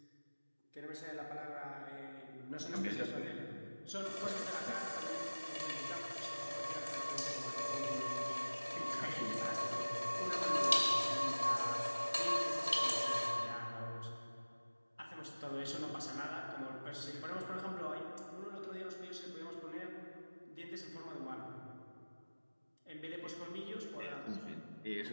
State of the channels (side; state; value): both; inverted; correlation -1.00